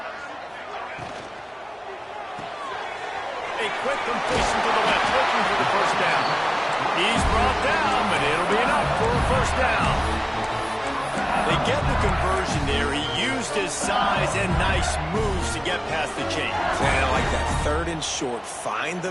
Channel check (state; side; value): identical; both; correlation 1.00